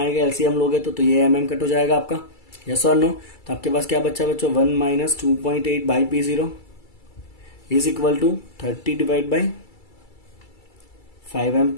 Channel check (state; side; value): late; right; 2.3 ms